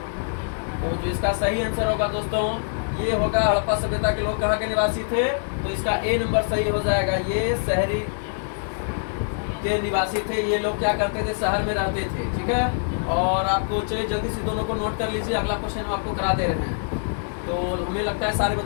इसका सही आंसर होगा दोस्तों, ये होगा हड़प्पा सभ्यता के लोग कहाँ के निवासी थे, तो इसका ए नंबर सही हो जाएगा। ये शहरी के निवासी थे, ये लोग क्या करते थे, शहर में रहते थे। ठीक है, और आपको चलिए जल्दी से दोनों को नोट कर लीजिए, अगला क्वेश्चन हम आपको करा दे रहे हैं। तो हमें लगता है सारे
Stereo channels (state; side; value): silent; right; 62 dB below the other